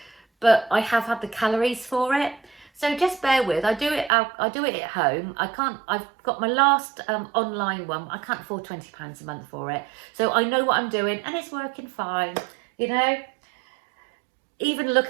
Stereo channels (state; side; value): drops out; left; at 4.1 s